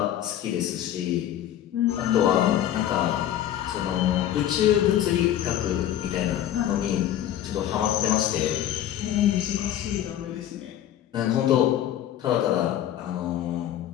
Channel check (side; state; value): right; quieter; 11.5 dB